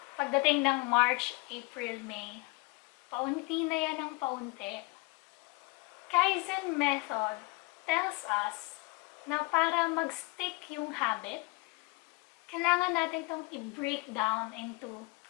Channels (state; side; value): quieter; right; 26.2 dB